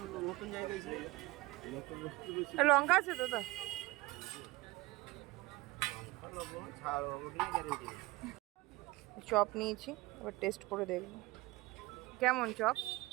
লঙ্কা আছে তো? চপ নিয়েছি, এবার টেস্ট করে দেখব কেমন চপ।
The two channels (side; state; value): left; quieter; 21.4 dB